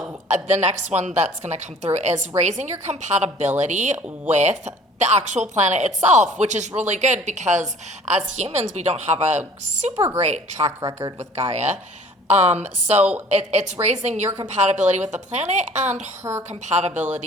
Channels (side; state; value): both; normal; correlation 0.51